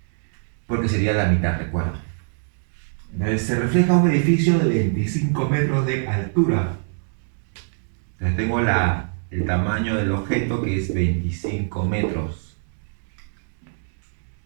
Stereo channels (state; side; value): silent; left; digital silence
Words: Porque sería la mitad, recuerda. Entonces se refleja un edificio de 25 metros de altura. Entonces tengo el tamaño del objeto, que es 25 metros.